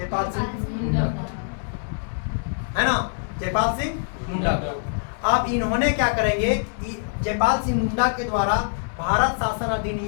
सिंह मुंडा, है ना, जयपाल सिंह मुंडा को। अब इन्होंने क्या करेंगे? जयपाल सिंह मुंडा के द्वारा भारत शासन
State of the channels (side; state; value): right; silent; 62 dB below the other